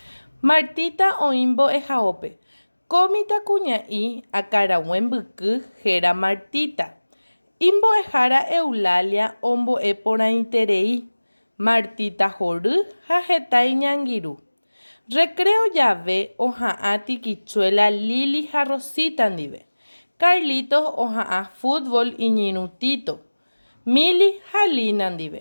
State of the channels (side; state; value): both; inverted; correlation -1.00